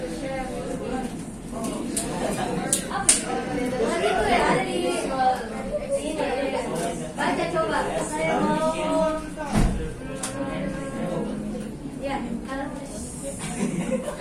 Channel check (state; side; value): identical; both; correlation 1.00